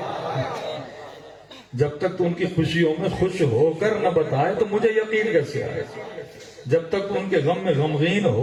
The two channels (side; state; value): both; identical; correlation 1.00